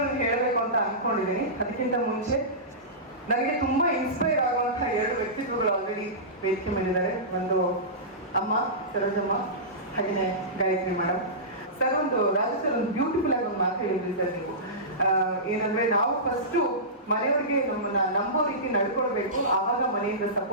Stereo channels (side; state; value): both; normal; correlation -0.20